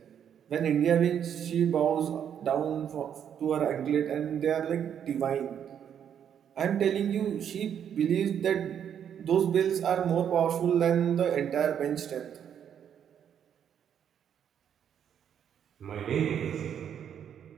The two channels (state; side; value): quieter; left; 8.8 dB